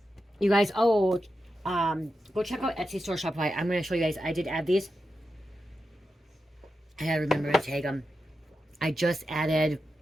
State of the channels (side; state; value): both; normal; correlation 0.89